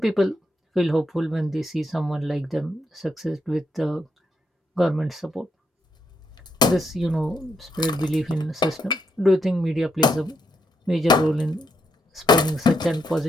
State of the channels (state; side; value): normal; both; correlation 0.79